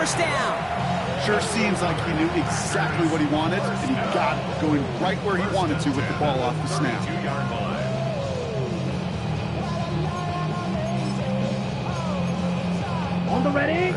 down. Sure seems like he knew exactly what he wanted, and he got it, going right where he wanted to with the ball off the snap. 2-yard line. On the ready.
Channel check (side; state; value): both; identical; correlation 1.00